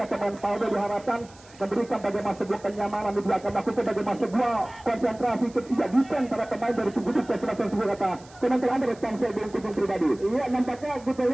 pemain Paldo diharapkan memberikan bagaimana sebuah kenyamanan di belakang melakukan bagaimana sebuah konsentrasi ketiga defense para pemain dari tim dibuka sebagian Sultan komentar Anda tentang saya bohong penjung pribadi. Iya nampaknya kita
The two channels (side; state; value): right; noise; hiss, 25 dB below the sound